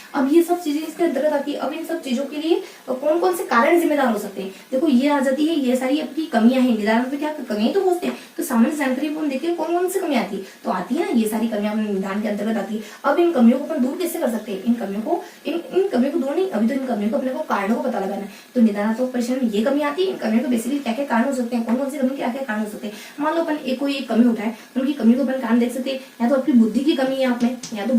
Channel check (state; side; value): identical; both; correlation 1.00